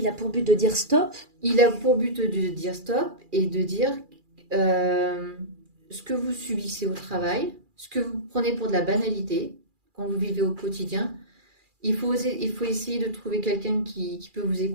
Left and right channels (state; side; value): late; left; 2.4 ms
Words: a pour but de dire stop? Il a pour but de dire stop et de dire ce que vous subissez au travail, ce que vous prenez pour de la banalité quand vous vivez au quotidien. Il faut essayer de trouver quelqu'un qui peut vous